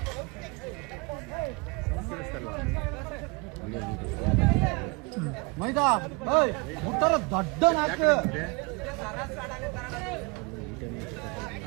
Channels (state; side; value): quieter; left; 29.2 dB